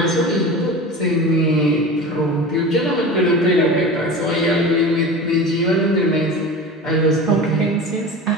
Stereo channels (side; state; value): both; normal; correlation 0.32